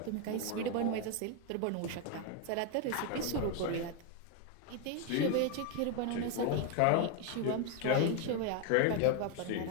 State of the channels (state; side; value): different; both; correlation 0.01